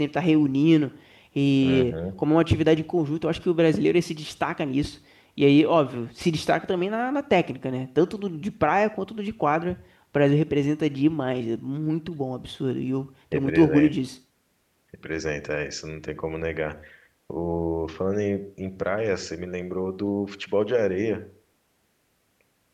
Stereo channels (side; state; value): both; identical; correlation 1.00